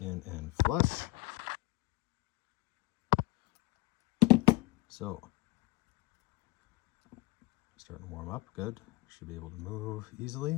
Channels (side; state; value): right; quieter; 21.6 dB